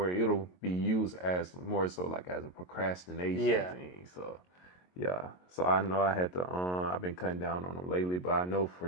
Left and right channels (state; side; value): late; right; 22 ms